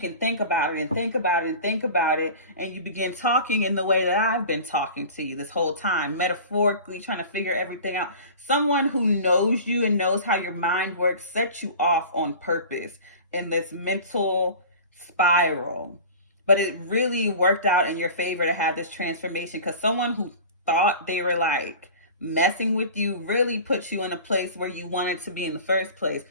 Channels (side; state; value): both; inverted; correlation -0.38